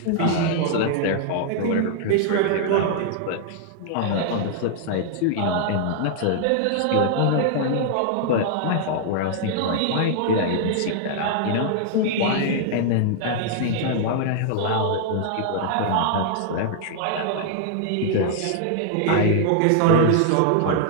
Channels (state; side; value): different; both; correlation -0.01